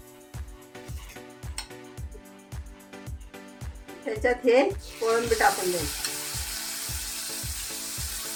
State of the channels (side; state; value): both; identical; correlation 1.00